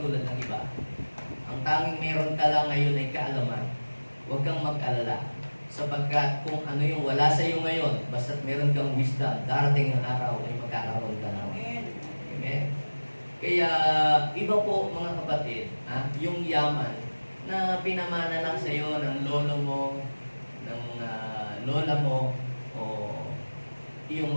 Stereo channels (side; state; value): both; inverted; correlation -1.00